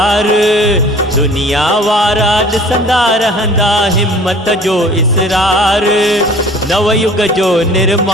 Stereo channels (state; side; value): normal; both; correlation 0.48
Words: दुनिया वारा ॾिसंदा रहंदा हिम्मत जो इसरार। नवयुग जो